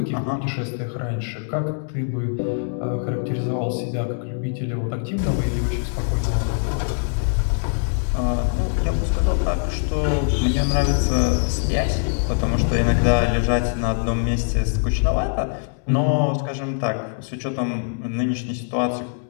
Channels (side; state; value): right; silent; 64 dB below the other